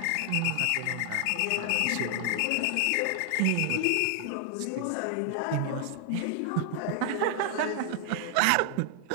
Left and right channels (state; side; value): different; both; correlation 0.00